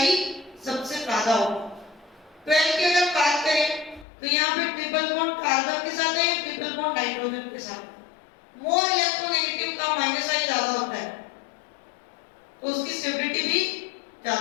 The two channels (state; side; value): drops out; right; at 4.0 s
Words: सबसे ज्यादा होगा। 12 की अगर बात करें तो यहाँ पे ट्रिपल बॉन्ड कार्बन के साथ है, ट्रिपल बॉन्ड नाइट्रोजन के साथ है। मोर इलेक्ट्रोनेगेटिव का माइनस आई ज्यादा होता है तो उसकी स्टेबिलिटी भी